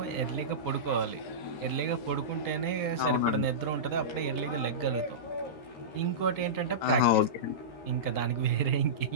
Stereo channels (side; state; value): right; late; 13 ms